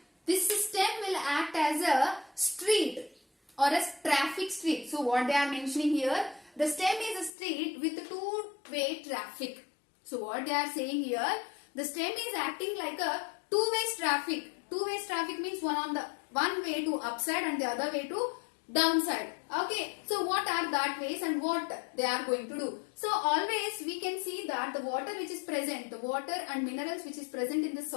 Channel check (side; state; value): right; drops out; at 7.3 s